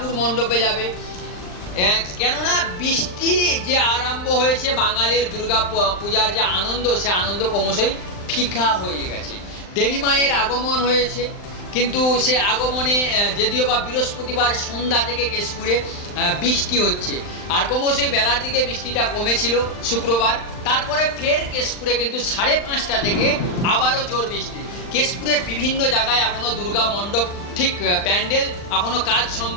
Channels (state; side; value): late; right; 39 ms